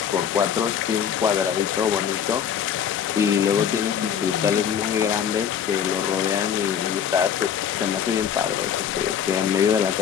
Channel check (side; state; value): right; quieter; 8.4 dB